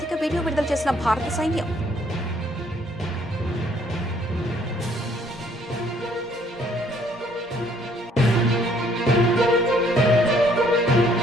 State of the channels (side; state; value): both; normal; correlation 0.63